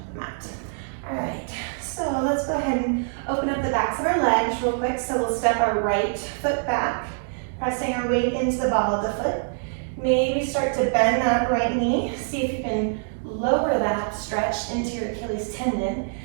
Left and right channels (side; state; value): left; silent; digital silence